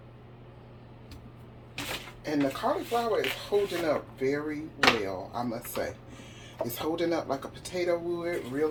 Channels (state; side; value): identical; both; correlation 1.00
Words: And the cauliflower is holding up very well, I must say. It's holding up like a potato would,